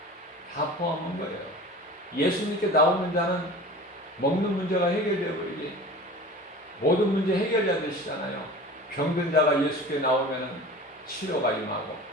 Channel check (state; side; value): normal; both; correlation 0.38